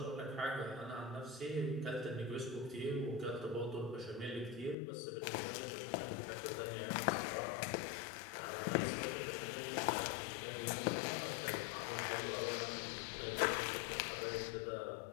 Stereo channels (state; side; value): drops out; right; at 4.8 s